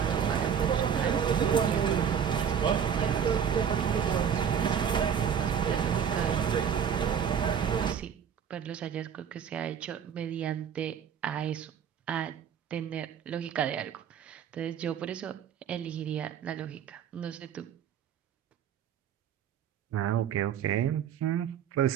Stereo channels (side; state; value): left; quieter; 8.1 dB